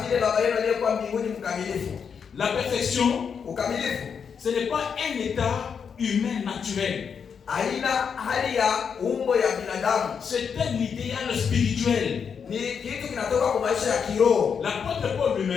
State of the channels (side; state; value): right; quieter; 6.7 dB